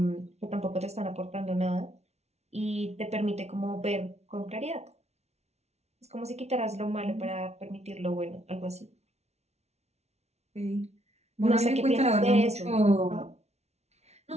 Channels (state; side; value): late; left; 0.31 ms